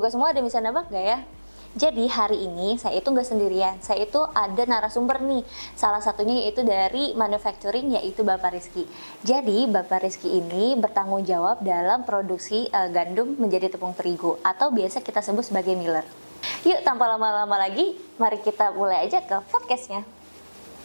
semua ada yang bisa nebak nggak ya? Jadi hari ini saya itu nggak sendirian, saya itu ada narasumber nih. Salah satunya yaitu dari manufacturing, yaitu Bapak Rizky. Jadi Bapak Rizky ini bertanggung jawab dalam produksi gandum menjadi tepung terigu atau biasa kita sebut sebagai miller. Yuk tanpa lama-lama lagi, mari kita mulai aja ke podcastnya.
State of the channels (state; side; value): inverted; both; correlation -1.00